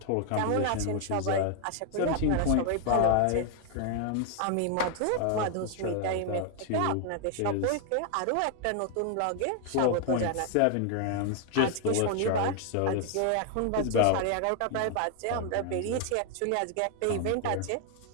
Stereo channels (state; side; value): different; both; correlation 0.00